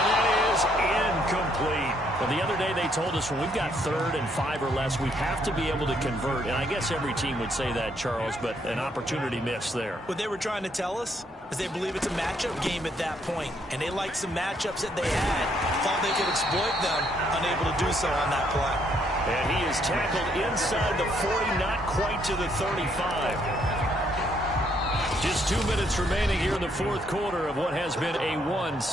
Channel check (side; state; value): both; normal; correlation 0.71